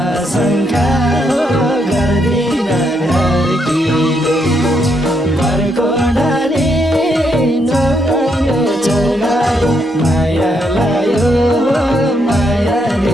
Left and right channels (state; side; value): normal; both; correlation 0.77